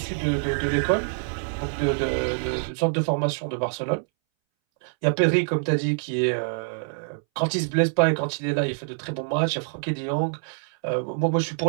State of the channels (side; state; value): left; silent; 61 dB below the other